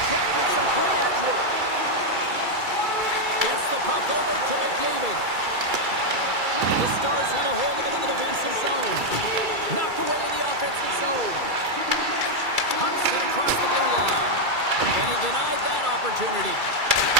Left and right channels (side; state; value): left; late; 2.3 ms